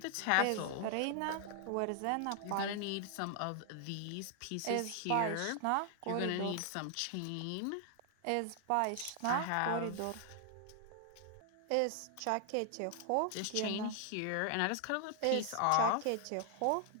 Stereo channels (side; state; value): both; different; correlation 0.00